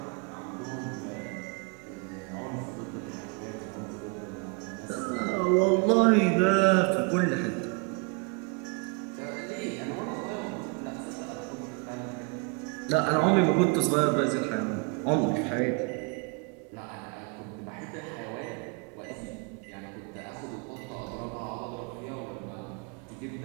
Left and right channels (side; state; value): left; quieter; 32.6 dB